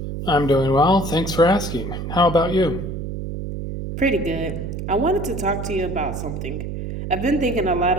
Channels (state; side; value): noise; right; hum, 6 dB below the sound